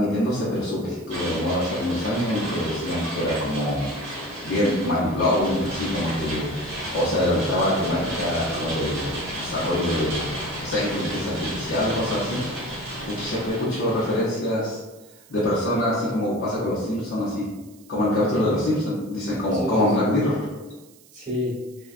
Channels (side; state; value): right; noise; hiss, 26 dB below the sound